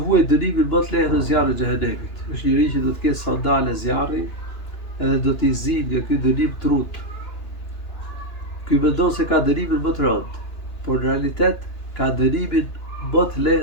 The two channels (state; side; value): late; right; 2.9 ms